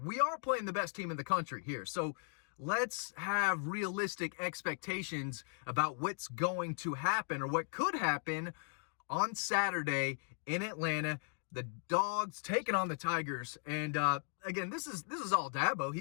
we are playing the best team in the country here. So let's have realistic expectations about what's going to happen or what could happen on Saturday in Atlanta. The Dogs taking on the Tigers. And again, this is all Dabo.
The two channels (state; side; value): silent; right; 53 dB below the other